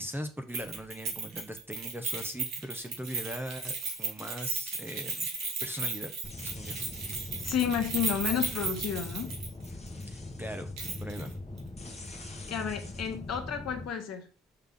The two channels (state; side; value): normal; both; correlation 0.43